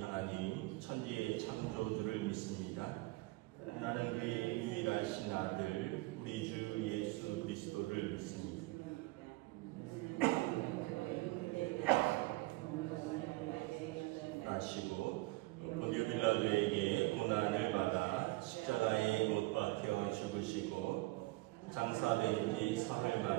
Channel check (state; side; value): quieter; left; 21.7 dB